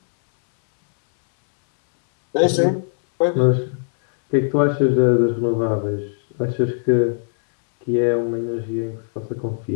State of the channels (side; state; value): right; silent; 63 dB below the other